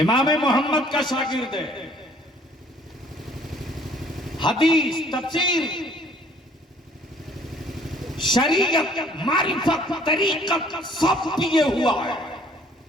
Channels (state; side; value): normal; both; correlation 0.58